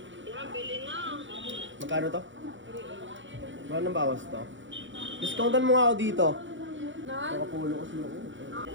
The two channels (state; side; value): late; left; 0.55 ms